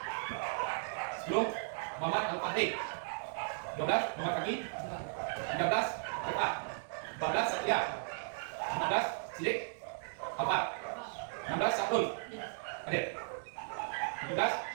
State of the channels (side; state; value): left; silent; digital silence